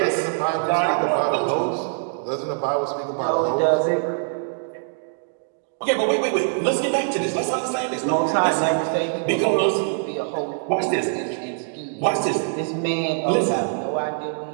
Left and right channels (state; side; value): silent; left; digital silence